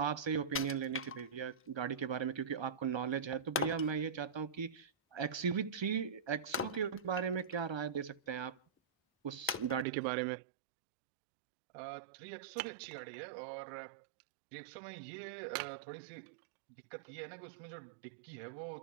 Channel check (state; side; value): drops out; left; at 9.9 s